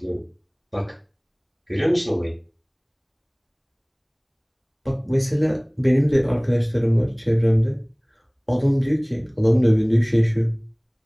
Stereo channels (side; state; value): both; identical; correlation 1.00